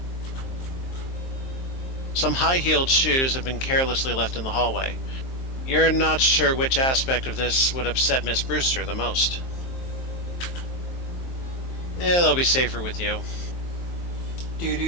Some high-heeled shoes have been carelessly left in the hallway. You're not sure which aspect of this would upset Miss Brewster the most. Yeah, they'll be safer with you. Do.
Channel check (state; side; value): late; right; 23 ms